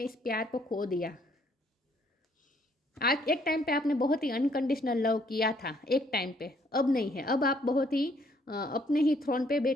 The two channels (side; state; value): both; normal; correlation 0.66